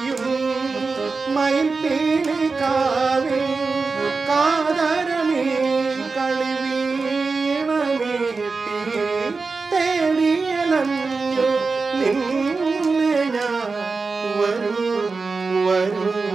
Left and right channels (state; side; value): quieter; left; 4.2 dB